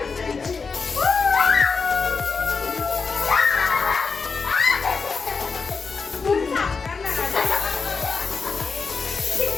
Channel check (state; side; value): quieter; right; 4.9 dB